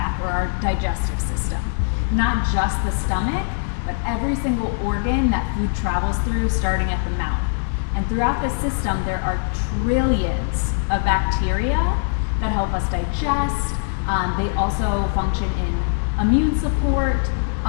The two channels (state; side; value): silent; right; digital silence